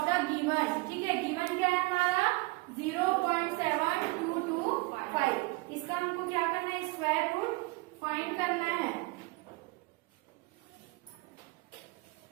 the given. ठीक है, गिवन क्या है हमारा? 0.7225. इसका हमको क्या करना है? स्क्वायर रूट फाइंड करना है.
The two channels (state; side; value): quieter; left; 24.8 dB